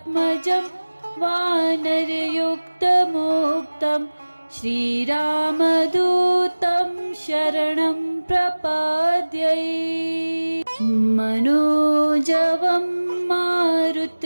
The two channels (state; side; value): inverted; both; correlation -1.00